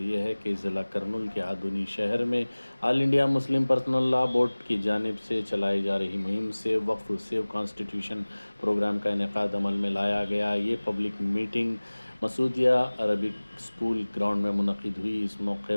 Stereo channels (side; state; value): both; inverted; correlation -1.00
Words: यह है कि ज़िला करनूल के आधुनी शहर में all India Muslim personal law board की जानिब से चलाई जा रही मुहिम से वक्फ सेव कॉन्स्टिट्यूशन प्रोग्राम का इनेकाद अमल में लाया गया। ये public meeting Masoodia Arabic school ground में मुनक़िद हुई। इस मौके